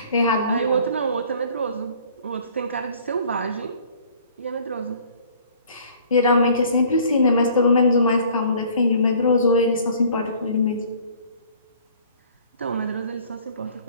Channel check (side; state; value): both; inverted; correlation -0.54